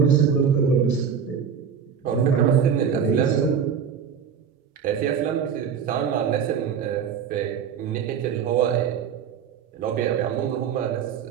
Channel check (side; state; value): left; quieter; 7.3 dB